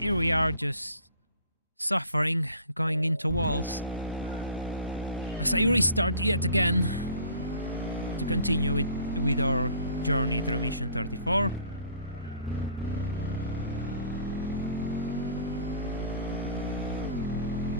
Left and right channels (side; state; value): both; inverted; correlation -0.50